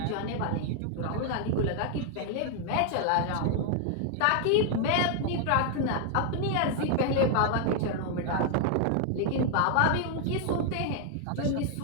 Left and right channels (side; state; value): both; different; correlation 0.00